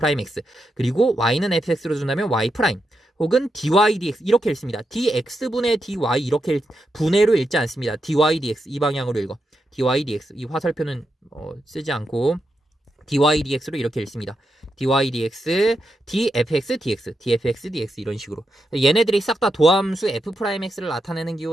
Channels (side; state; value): both; normal; correlation 0.85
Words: 그리고 y는 fx로 준다면 y', 혹은 dy dx 이렇게 읽습니다. dx분의 dy 이렇게 분해로 읽지 않습니다. dy dx 이 방향으로 읽어. dy dx 이 화살표는 쓰지 않고 dy dx로 이렇게 읽습니다. dy dx, dfx dx, dfx dx 이런 식으로. 얘네들이 싹 다 도함수 f'x를 나타내는